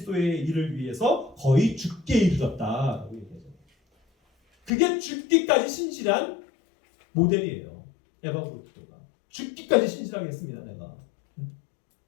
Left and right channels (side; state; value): right; drops out; at 4.7 s